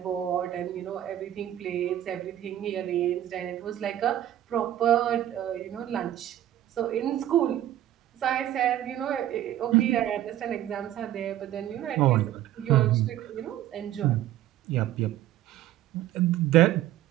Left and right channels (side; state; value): left; quieter; 12.6 dB